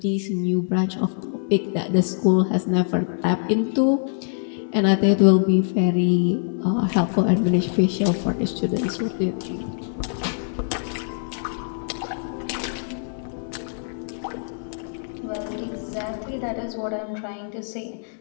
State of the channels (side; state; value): right; silent; digital silence